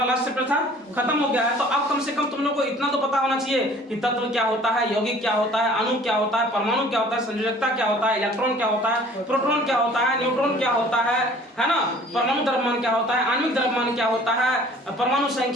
लास्ट चैप्टर था, खत्म हो गया है, तो अब कम से कम तुम लोग को इतना तो पता होना चाहिए कि तत्व क्या होता है, यौगिक क्या होता है, अणु क्या होता है, परमाणु क्या होता है, संयोजकता क्या होता है, इलेक्ट्रॉन क्या होता है, प्रोटॉन क्या होता है, न्यूट्रॉन क्या होता है ना, परमाणु द्रव्यमान क्या होता है, आणविक द्रव्यमान क्या होता है, परमाणु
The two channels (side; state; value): both; normal; correlation 0.51